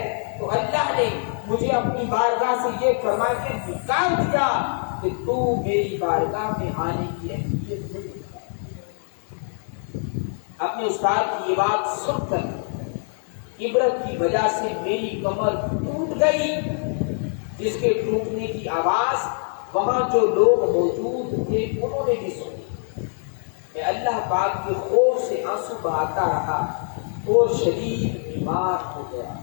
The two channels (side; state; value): right; silent; 63 dB below the other